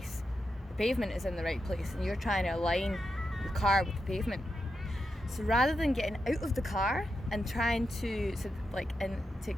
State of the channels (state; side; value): normal; both; correlation 0.87